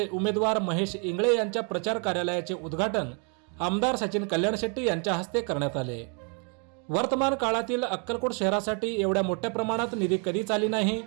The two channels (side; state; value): left; quieter; 38.2 dB